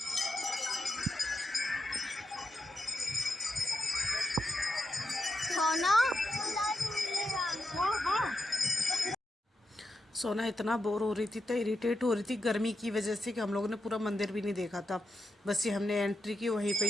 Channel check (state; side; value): normal; both; correlation 0.88